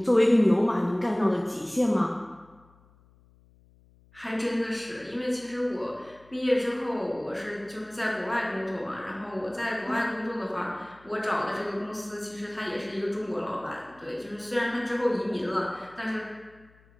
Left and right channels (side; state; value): left; noise; hum, 29 dB below the sound